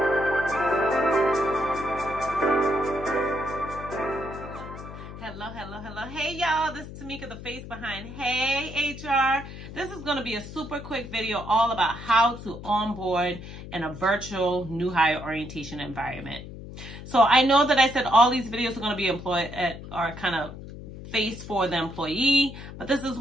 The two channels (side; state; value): left; noise; hum, 12 dB below the sound